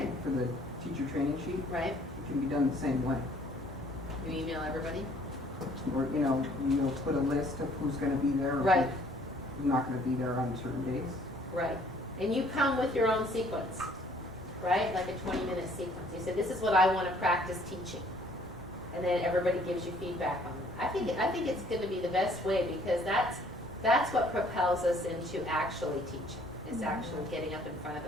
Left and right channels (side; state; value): both; normal; correlation 0.59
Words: for the teacher training sheet. right? It can be done the same way. You email everybody? Or, you'll put a list of who's gonna be there. Or Right. who's not gonna be there on certain days. Right. And you come with your own sequence, right? Like a 20-minute sequence. You say, this is what I want to practice teaching. And then everybody gives you feedback on it. I think it's going to be the best way, because that's what propels us into actually teaching, is actually getting up in front of